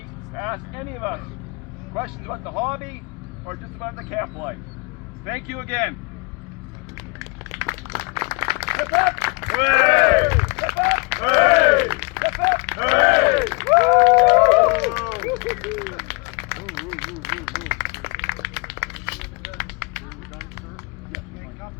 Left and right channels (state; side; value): quieter; right; 30.6 dB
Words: to ask any of us questions about the hobby or just about the camp life. Thank you again. Hip hip! Hooray! Hip hip! Hooray! Hip hip! Hooray!